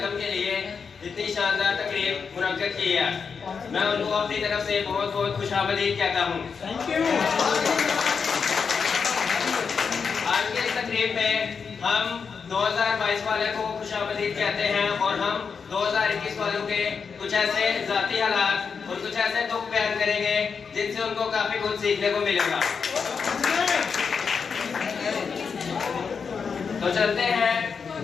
के लिए इतनी शानदार तकरीब मुनक्कद की है। मैं उनको अपनी तरफ से बहुत बहुत खुशामदीद कहता हूँ। आज के इस तकरीब में हम 2022 वाले को खुशामदीद कहते हैं और हम 2021 वालों के कुछ ऐसे ज़ाती हालात और कुछ ऐसे दुख बयान करेंगे जिनसे उनको काफी कुछ सीखने को मिलेगा। तो चलते हैं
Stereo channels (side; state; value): right; quieter; 5.8 dB